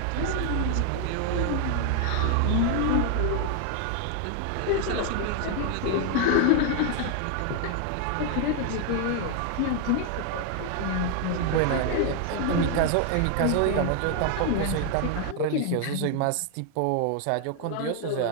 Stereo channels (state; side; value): different; both; correlation 0.00